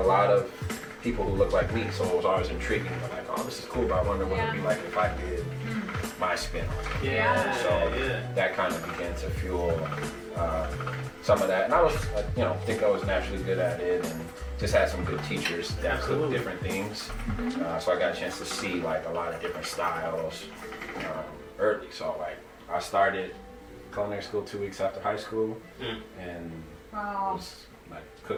of people who looked like me, so it was always intriguing. Like, oh, this is cool, but I wonder what it'd be like if I did my spin on it. So that kind of began to fuel some of that, and I was, think I was naturally good at it, and just had some good teachers that cooked different things. So I got a chance to see like a lot of different styles early. So like I started culinary school 2 weeks after high school, and was like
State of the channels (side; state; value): both; identical; correlation 1.00